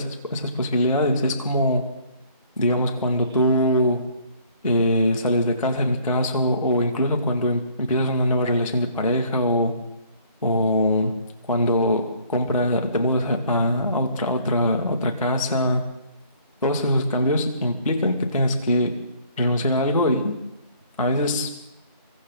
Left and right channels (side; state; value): both; inverted; correlation -0.58